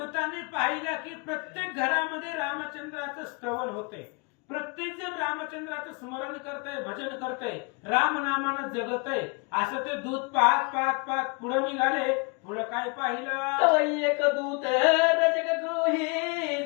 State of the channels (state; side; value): quieter; right; 31.7 dB